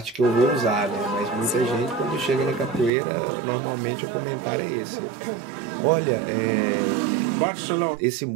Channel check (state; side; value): drops out; left; at 2.9 s